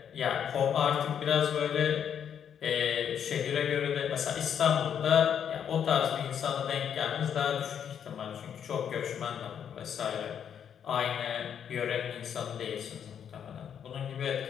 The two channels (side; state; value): right; quieter; 8.4 dB